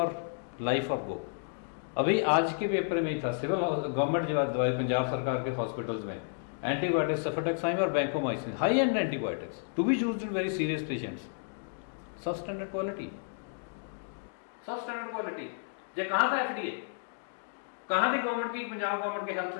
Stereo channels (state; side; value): silent; right; digital silence